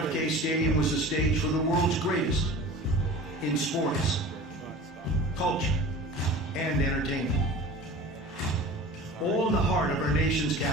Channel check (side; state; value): both; normal; correlation 0.39